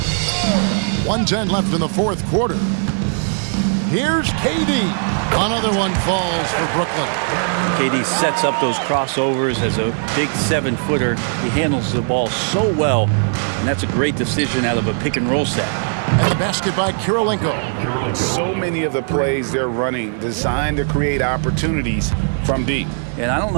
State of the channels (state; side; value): silent; left; 60 dB below the other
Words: .110 left in the fourth quarter. Here's KD. Another one falls for Brooklyn. KD sets up those crossovers as a big 7-footer. He handles the ball so well, and that's a great decision out of a pick-and-roll set. And the basket by Kirilenko. So many of the plays they're running designed to create opportunities from deep. And I don't